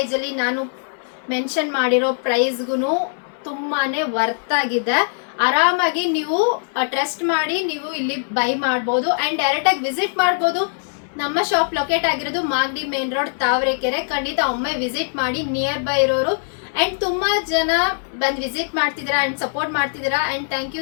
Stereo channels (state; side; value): silent; right; digital silence